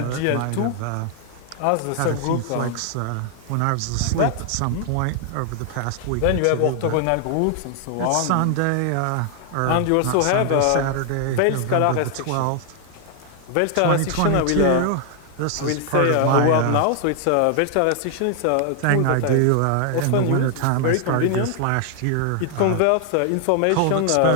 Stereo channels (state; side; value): different; both; correlation 0.00